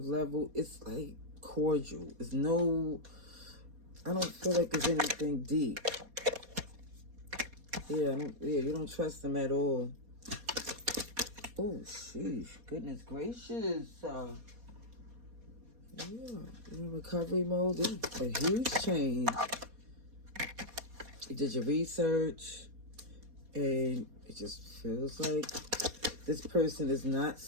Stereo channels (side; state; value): left; late; 4.2 ms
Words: level, it's like cordial. It's no, I don't feel like there's anything deep. Yeah, you don't trust them at all. Oh, sheesh. Goodness gracious. Yeah, you're in recovery mode. This is a huge change. You did your research, and it just feels like this person is not